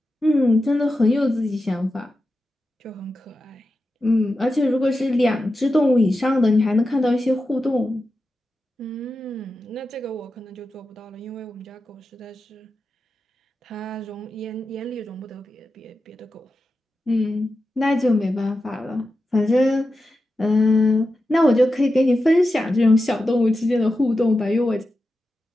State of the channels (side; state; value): both; normal; correlation 0.91